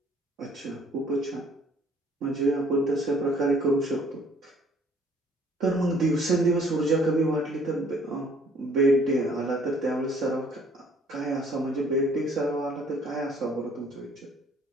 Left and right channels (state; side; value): normal; both; correlation 0.59